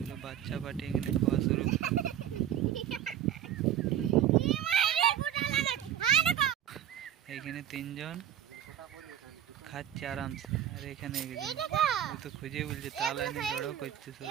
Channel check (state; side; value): quieter; left; 10.5 dB